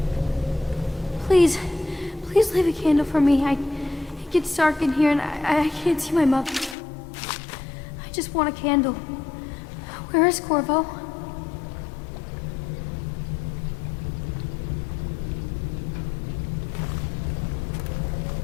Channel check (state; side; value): drops out; right; at 6.8 s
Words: Please leave a candle for me. It gets dark in here and I can't see my mother. I just want a candle. Where is Corvo?